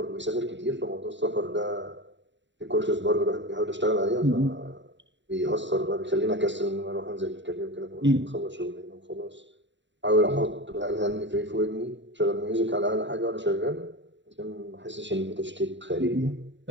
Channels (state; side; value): late; left; 0.53 ms